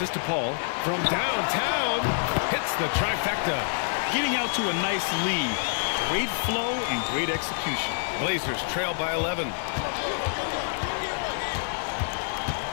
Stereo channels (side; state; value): right; silent; 60 dB below the other